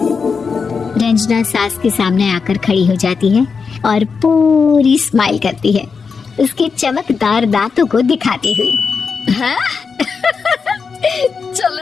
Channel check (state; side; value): quieter; right; 5.3 dB